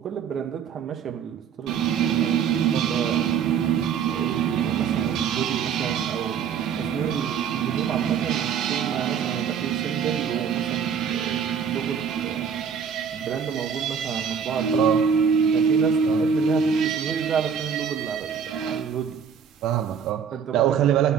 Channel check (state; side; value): quieter; left; 7.2 dB